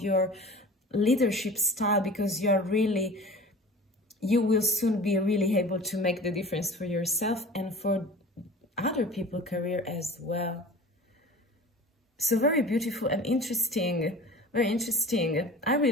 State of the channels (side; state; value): both; normal; correlation 0.40